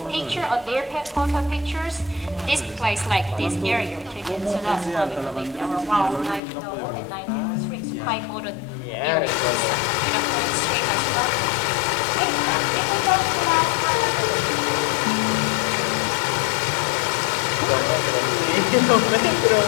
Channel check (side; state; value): right; drops out; at 6.4 s